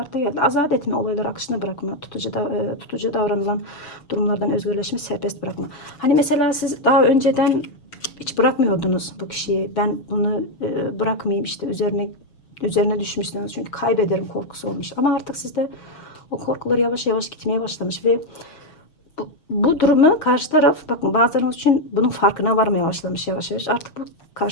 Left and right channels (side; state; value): right; late; 6.6 ms